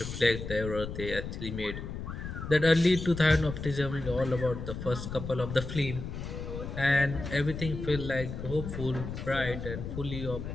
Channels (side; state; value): left; noise; rumble, 7 dB below the sound